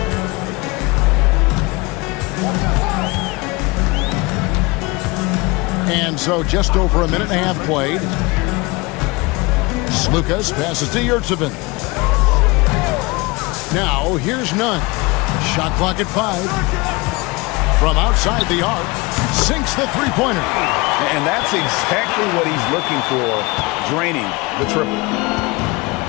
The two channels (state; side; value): quieter; right; 24.7 dB